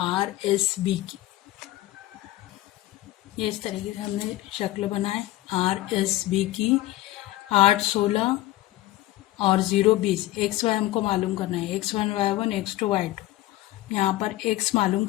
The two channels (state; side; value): quieter; right; 16.3 dB